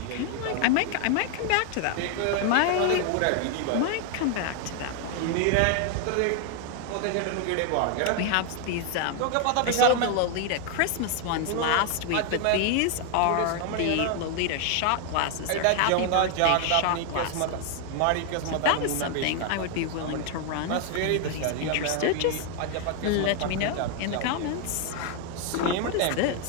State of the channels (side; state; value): both; different; correlation 0.00